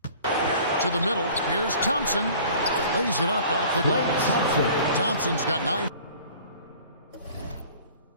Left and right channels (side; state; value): both; inverted; correlation -0.48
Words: To the middle. Here's Thompson. Lays it up off the glass. Thompson's got 9.